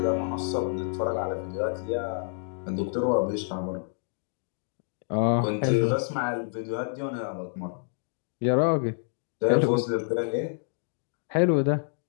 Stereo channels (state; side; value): silent; right; digital silence